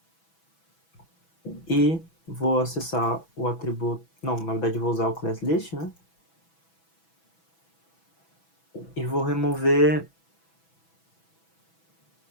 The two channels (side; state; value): right; late; 6.1 ms